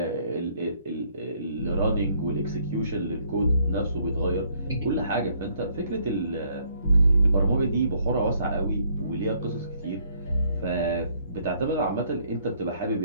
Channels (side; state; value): both; inverted; correlation -0.66